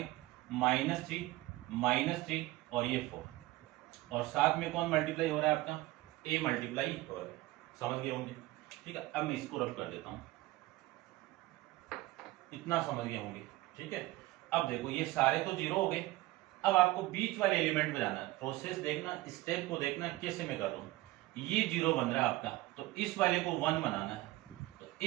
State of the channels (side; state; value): left; quieter; 18.4 dB